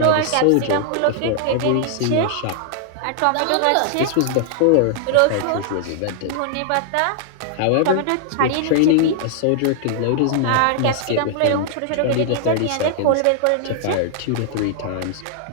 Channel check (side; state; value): both; different; correlation -0.01